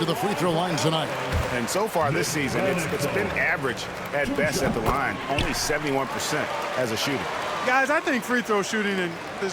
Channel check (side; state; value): both; identical; correlation 1.00